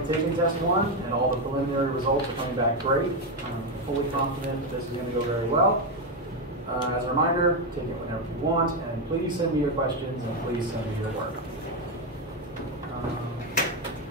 taken test 1, and all the preliminary results are coming back great. I'm fully confident that this is going to go very well. As a reminder, take it whenever you want, and please send me your questions, and please send me your work.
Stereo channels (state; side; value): normal; both; correlation 0.07